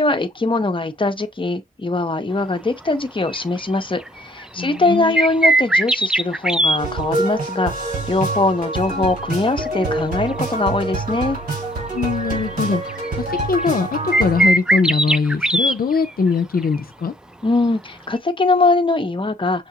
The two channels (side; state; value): both; normal; correlation 0.62